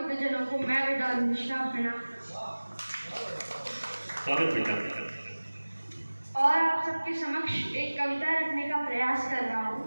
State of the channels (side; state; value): both; inverted; correlation -1.00